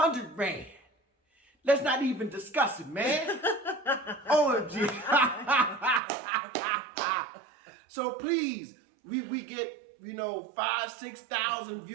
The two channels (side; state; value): left; drops out; at 6.0 s